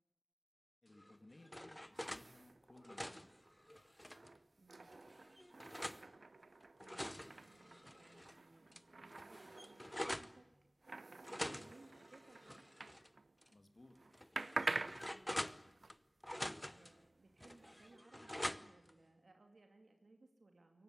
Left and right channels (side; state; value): both; normal; correlation 0.98